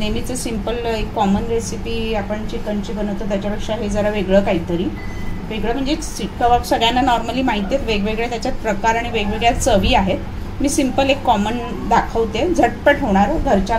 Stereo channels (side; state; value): both; identical; correlation 1.00